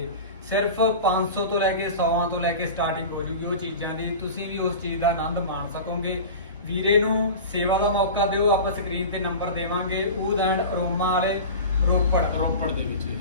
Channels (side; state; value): both; inverted; correlation -0.32